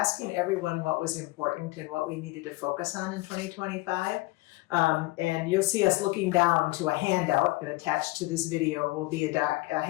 everyone what was important and what we needed to focus on in 2025. And you'll see us looking down to a handout, and attached to this video will be a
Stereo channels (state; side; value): quieter; right; 21.6 dB